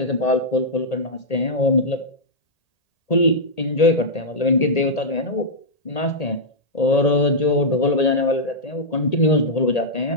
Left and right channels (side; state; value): right; late; 1.8 ms